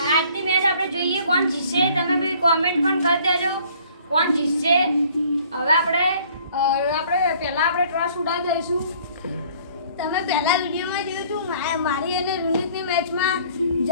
આજની મેચ આપણે જોઈએ કોણ જીતશે. તમે બી કોમેન્ટ પણ કરી દેજો કોણ જીતશે. હવે આપણે પહેલા આપણે ટોસ ઉડાવી દઈશું. તમે પહેલા વિડીયોમાં જોયું હતું મારી અને રોનિકની મેચમાં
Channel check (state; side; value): inverted; both; correlation -0.56